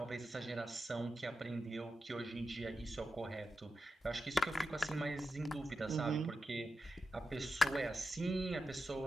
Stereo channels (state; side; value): normal; both; correlation 0.90